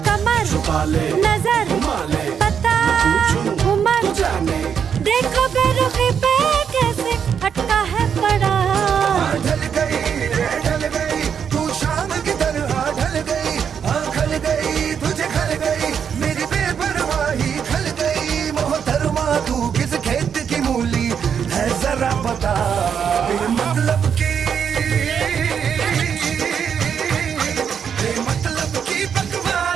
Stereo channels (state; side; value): quieter; left; 7.5 dB